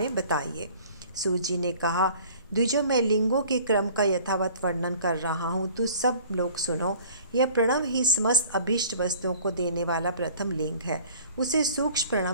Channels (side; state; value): both; inverted; correlation -0.49